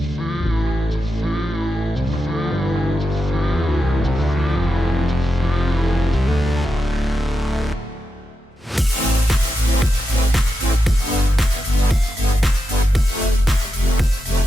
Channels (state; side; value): normal; both; correlation 0.88